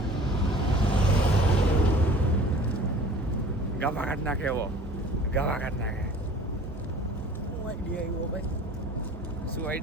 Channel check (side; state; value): both; normal; correlation 0.46